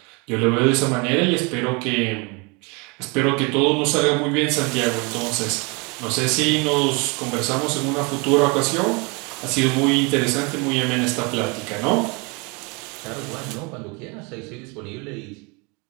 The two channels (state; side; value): quieter; left; 30.2 dB